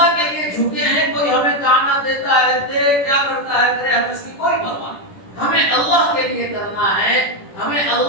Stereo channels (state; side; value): late; right; 10 ms